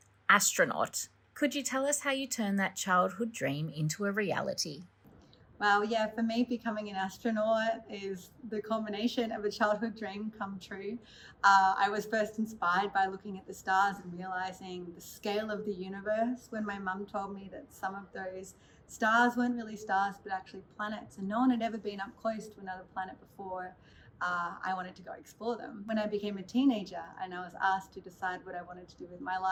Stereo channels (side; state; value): both; identical; correlation 1.00